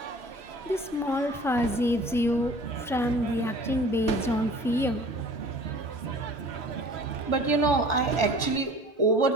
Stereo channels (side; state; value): both; normal; correlation 0.46